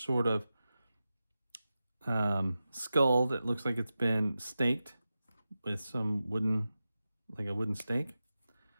sort of skull that looks like it's been staked with some wooden, like a wooden stake.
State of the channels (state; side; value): inverted; both; correlation -0.93